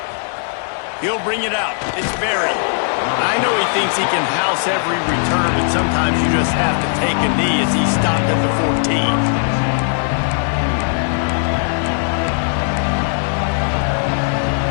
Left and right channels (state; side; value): silent; right; 67 dB below the other